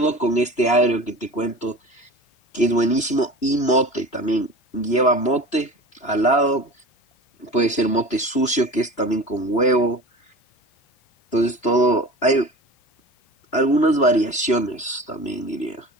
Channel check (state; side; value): late; right; 3.0 ms